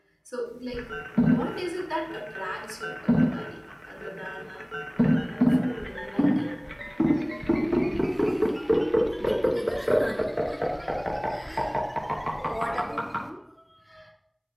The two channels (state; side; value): identical; both; correlation 1.00